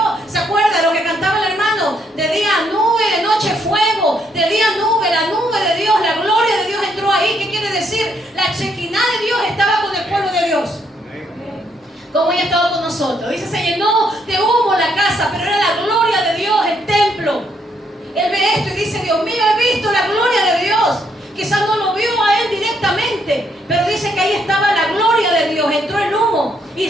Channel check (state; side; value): normal; both; correlation 0.73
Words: ¿Se acuerda lo que cantaba el hermano? De día nube, de noche fuego. De día nube, la nube de Dios, la gloria de Dios entró ahí. ¿Qué quiere decir? La chequiná de Dios estaba con el pueblo de Dios. Como ella estaba con nosotros. Dice, se llenó de humo la casa, pero era la gloria de Dios, el templo. Él ve esto y dice, Dios mío, he visto la gloria de Dios. Quizás no lo vio a él directamente, pero dice que ahí estaba la gloria de Dios. Entró el humo y